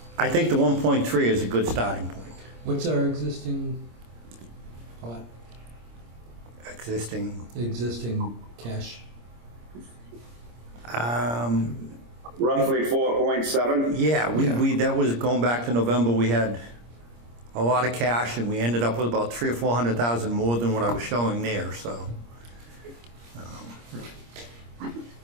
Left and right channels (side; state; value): left; late; 26 ms